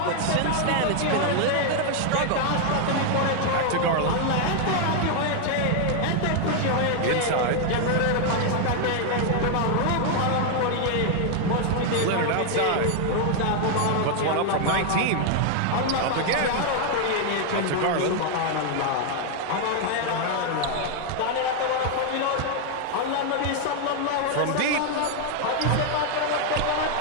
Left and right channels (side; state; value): both; different; correlation 0.00